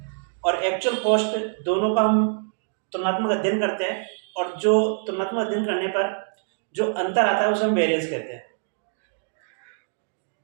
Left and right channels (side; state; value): left; silent; 58 dB below the other